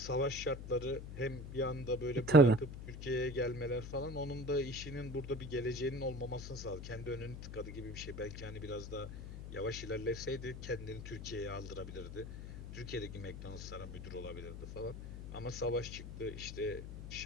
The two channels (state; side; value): noise; left; hum, 9 dB below the sound